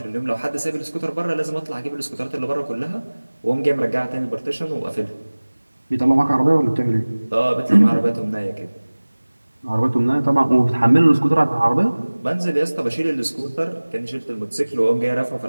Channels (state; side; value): inverted; both; correlation -1.00